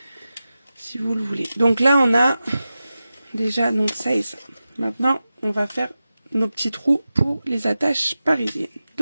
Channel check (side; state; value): both; inverted; correlation -0.94